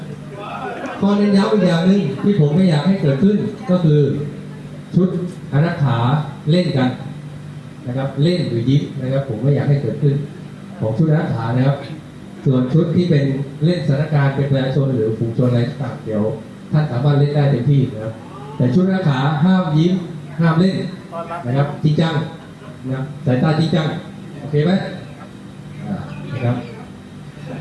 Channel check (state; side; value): identical; both; correlation 1.00